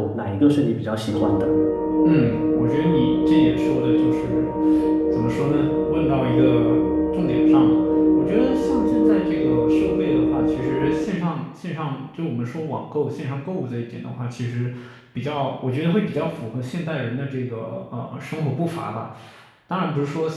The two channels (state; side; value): identical; both; correlation 1.00